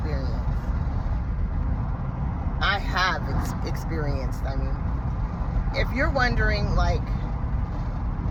I have experienced, I mean. If you're wondering, like,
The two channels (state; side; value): identical; both; correlation 1.00